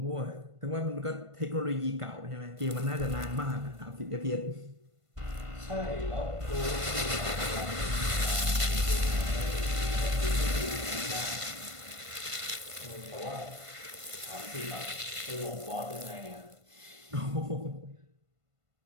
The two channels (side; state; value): left; late; 1.5 ms